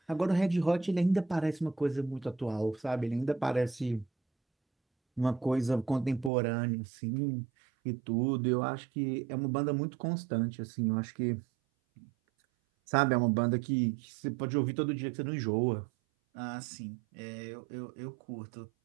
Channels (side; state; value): left; drops out; at 6.3 s